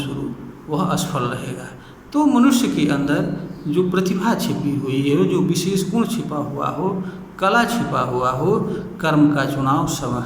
वह असफल रहेगा। तो मनुष्य के अंदर जो प्रतिभा छिपी हुई है, जो विशेष गुण छिपा हुआ हो, कला छिपा हुआ हो, कर्म का चुनाव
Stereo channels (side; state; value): both; identical; correlation 1.00